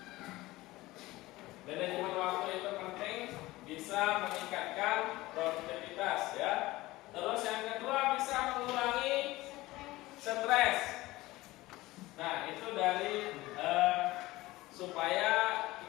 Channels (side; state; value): right; quieter; 18.8 dB